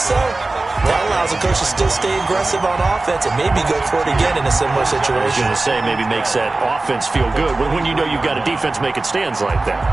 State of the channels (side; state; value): left; quieter; 3.2 dB